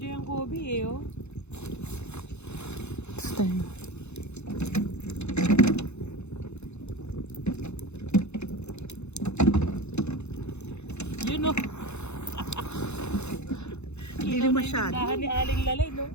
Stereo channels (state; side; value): late; right; 0.81 ms